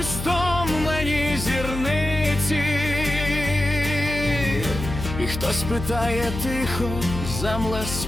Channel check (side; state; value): left; noise; hum, 6 dB below the sound